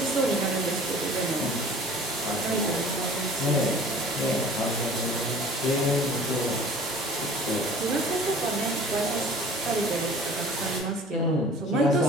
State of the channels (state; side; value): normal; both; correlation 0.46